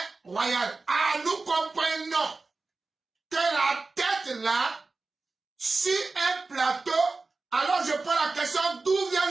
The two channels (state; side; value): quieter; left; 3.7 dB